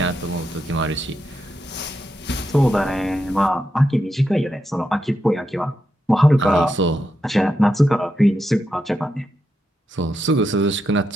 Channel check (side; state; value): both; normal; correlation 0.85